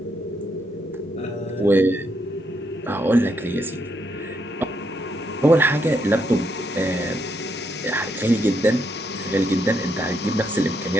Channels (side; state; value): both; normal; correlation 0.77